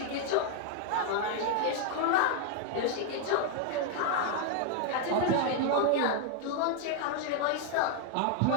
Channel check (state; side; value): different; both; correlation 0.00